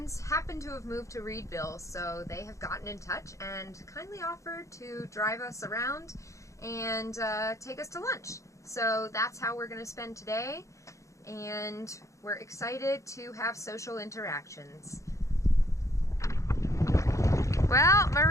happen to have moved to Reedville, so they have gotten in touch and kindly offered to drive us around and take us to lunch. So that's how we're going to spend today, and we're excited to have social interactions. Well,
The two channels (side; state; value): right; late; 0.15 ms